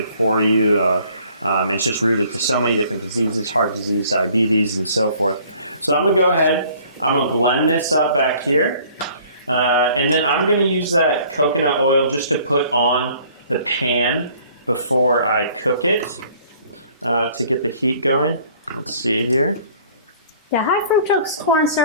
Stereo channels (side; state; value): both; inverted; correlation -0.55